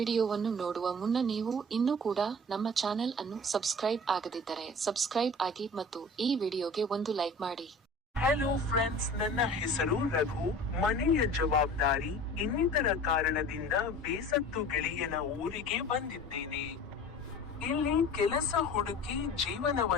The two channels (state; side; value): normal; both; correlation 0.41